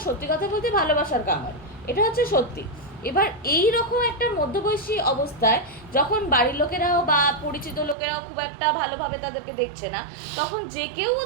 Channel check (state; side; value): drops out; left; at 8.0 s